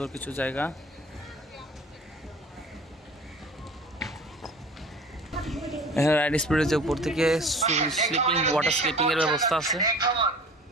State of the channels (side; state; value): both; normal; correlation 0.44